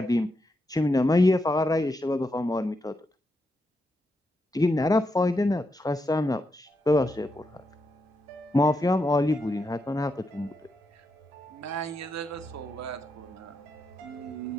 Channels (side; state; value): both; normal; correlation 0.84